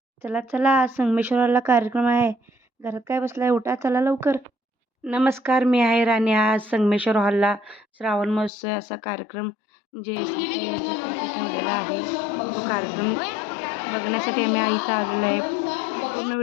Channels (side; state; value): right; drops out; at 8.5 s